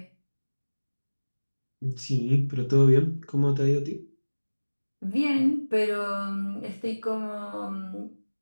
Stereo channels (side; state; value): both; inverted; correlation -1.00